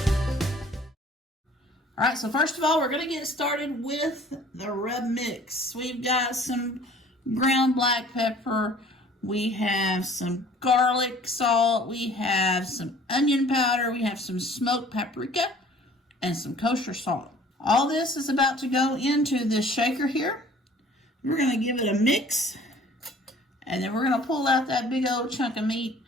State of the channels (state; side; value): normal; both; correlation 0.51